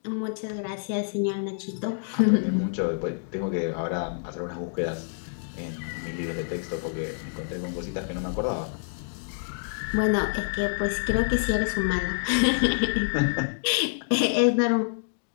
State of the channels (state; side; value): silent; right; digital silence